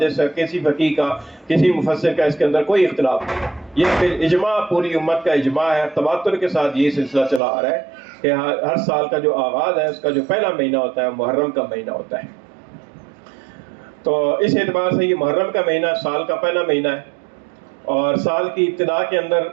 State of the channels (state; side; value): drops out; left; at 7.4 s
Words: کا، کسی فقیہ کا، کسی مفسر کا اس کے اندر کوئی اختلاف نہیں، یہ پھر اجماع پوری امت کا اجماع ہے، تواتر کے ساتھ یہ سلسلہ چلا آ رہا ہے کہ ہر سال کا جو آغاز ہے اس کا جو پہلا مہینہ ہوتا ہے محرم کا مہینہ ہوتا ہے۔ تو اس اعتبار سے یہ محرم کا مہینہ سال کا پہلا مہینہ ہے، اور سال کی ابتدا کے اندر